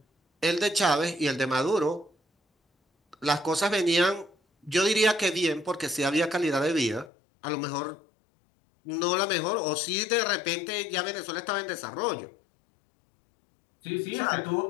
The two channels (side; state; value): right; drops out; at 7.1 s